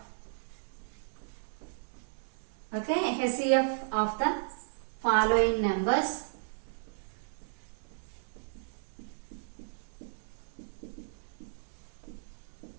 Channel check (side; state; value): left; silent; 55 dB below the other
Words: Okay, HCF of the following numbers.